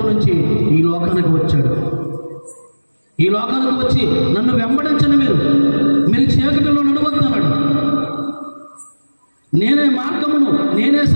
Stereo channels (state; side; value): inverted; both; correlation -1.00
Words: నుంచి ఈ లోకానికి వచ్చాడు. ఈ లోకానికి వచ్చి నన్ను వెంబడించండి, మీరు చీకటిలో నడవద్దు అన్నాడు. నేనే మార్గమును, నేనే